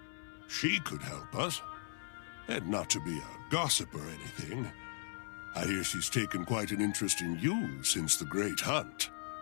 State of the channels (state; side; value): silent; right; 52 dB below the other